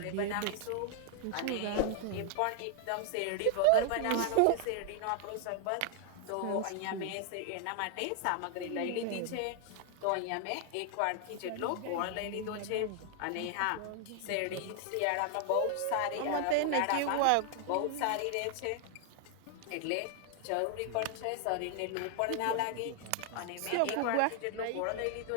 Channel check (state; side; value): different; both; correlation 0.00